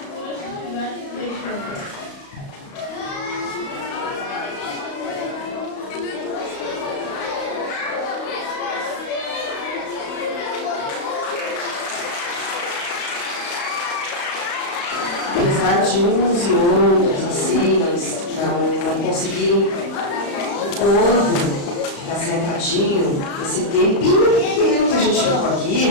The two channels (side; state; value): right; late; 34 ms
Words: de gigantes beijando. apesar de uns e outros, assim, não conseguirem o corpo ficar sentadinho, esse tempinho pequeno que a gente ficou